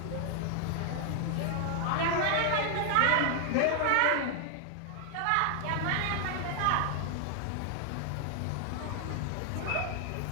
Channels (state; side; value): different; both; correlation 0.00